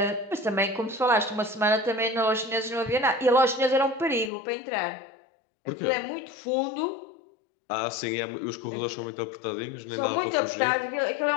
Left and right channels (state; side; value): drops out; right; at 4.3 s